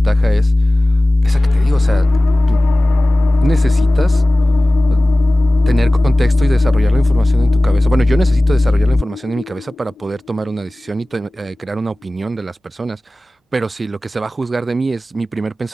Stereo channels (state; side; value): normal; both; correlation 0.97